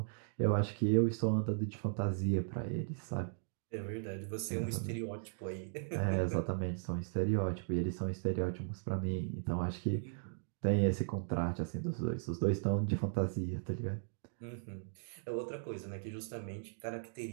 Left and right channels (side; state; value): left; silent; digital silence